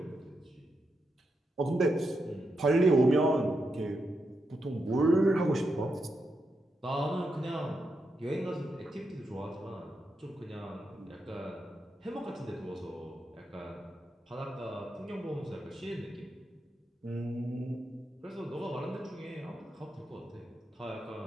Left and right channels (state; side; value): normal; both; correlation 0.85